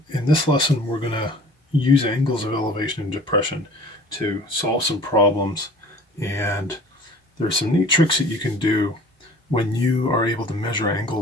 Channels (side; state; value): both; normal; correlation 0.47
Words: this lesson, we're going to use angles of elevation and depression to solve some problems. And there's some neat tricks that you can do when you are able to measure